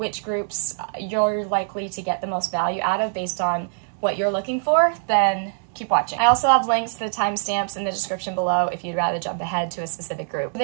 groups you're likely to get the most value out of based on what you're looking for, then keep watching. I also have links to the timestamps in the description below if you'd rather jump ahead to a specific group.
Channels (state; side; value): silent; left; digital silence